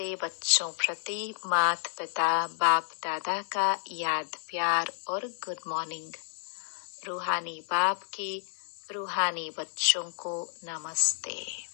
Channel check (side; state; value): right; silent; digital silence